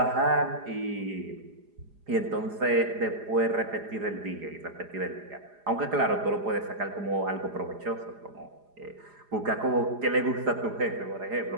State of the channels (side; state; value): left; late; 4.9 ms